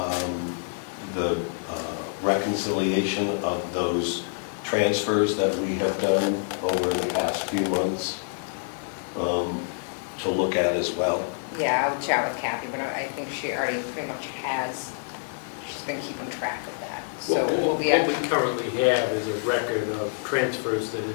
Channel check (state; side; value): silent; right; digital silence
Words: the reconciliation of those transfers that we have done over the past few months to look at as well. Yeah, I'll chat with Kathy, but I think she already pretty much has, she's been keeping track of that. So we'll be What we currently have is a record of transfers that